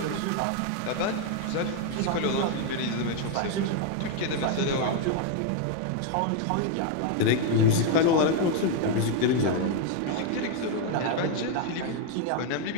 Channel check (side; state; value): both; different; correlation 0.01